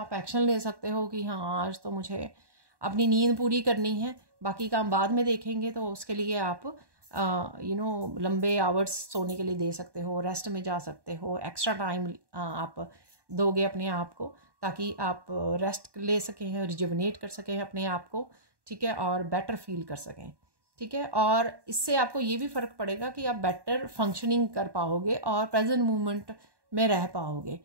एक्शन ले सकते हो कि हाँ आज तो मुझे अपनी नींद पूरी करनी है, बाकी काम बाद में देखेंगे। तो उसके लिए आप लंबे आवर्स सोने के लिए दे सकते हो, रेस्ट में जा सकते हो, एक्स्ट्रा टाइम आप दोगे अपने आप को ताकि आप रेस्ट ले सकें, रिजुवनेट कर सकें अपने आप को, ठीक है, और बेटर फील कर सकें, ठीक है। और इससे आपको ये भी फ़र्क पड़ेगा कि आप बेटर फंक्शनिंग कर पाओगे और प्रेजेंट मोमेंट में रह पाओगे।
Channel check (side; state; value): left; late; 1.1 ms